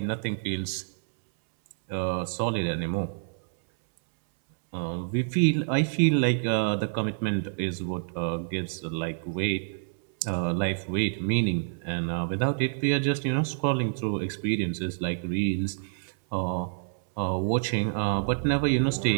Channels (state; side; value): silent; left; 60 dB below the other